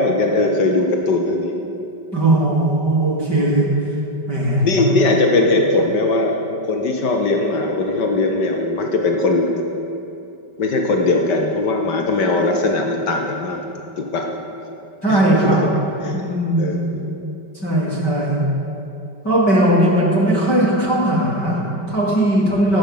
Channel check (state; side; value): late; right; 5.2 ms